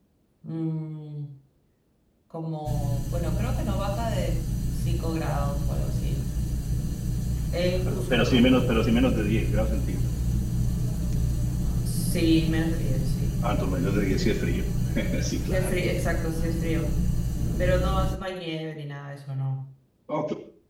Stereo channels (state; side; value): identical; both; correlation 1.00